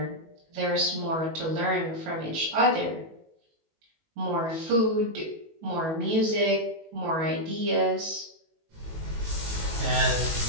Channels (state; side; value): late; left; 19 ms